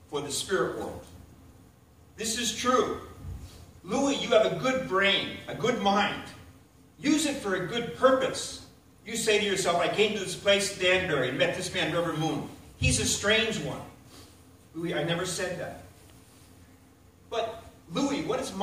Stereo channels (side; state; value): both; identical; correlation 1.00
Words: for the spirit world. This is true. Louis, you have a good brain, a good mind. Use it for a good purpose. You say to yourself, I came to this place, Danbury, and met this man, Reverend Moon. He's a strange one. Louis, I never said that. But, Louis, what is